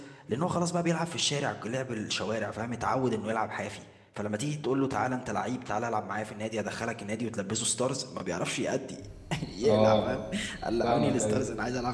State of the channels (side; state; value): both; identical; correlation 1.00